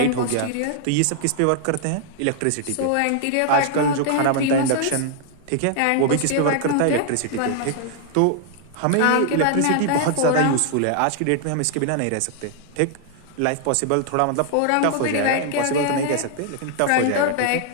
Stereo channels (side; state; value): both; different; correlation 0.00